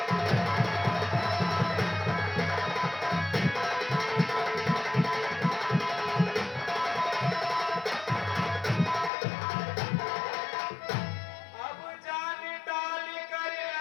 अब जान डाल कर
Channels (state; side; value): drops out; right; at 9.1 s